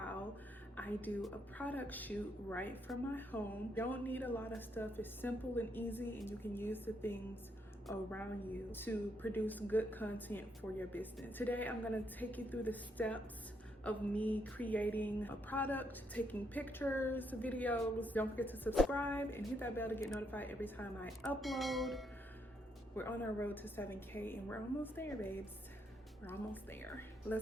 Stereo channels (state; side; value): normal; both; correlation 0.75